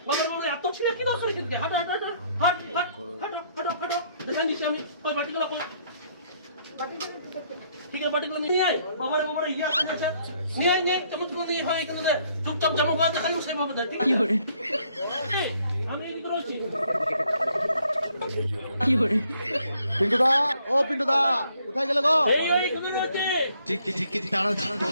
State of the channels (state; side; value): inverted; both; correlation -0.67